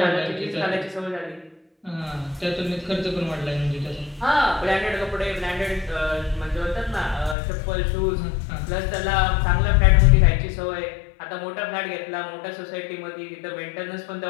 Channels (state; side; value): drops out; right; at 7.4 s